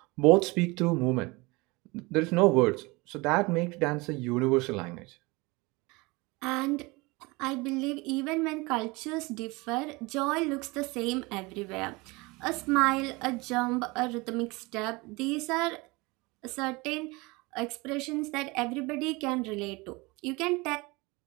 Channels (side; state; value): left; quieter; 24.5 dB